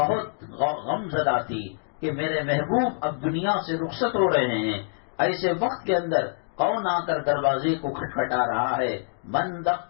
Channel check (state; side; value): silent; right; digital silence